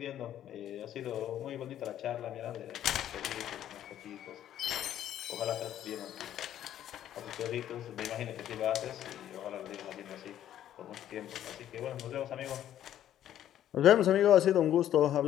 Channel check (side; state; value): right; quieter; 11.4 dB